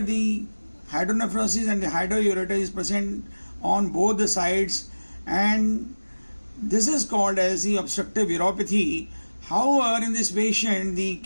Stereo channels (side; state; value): both; inverted; correlation -1.00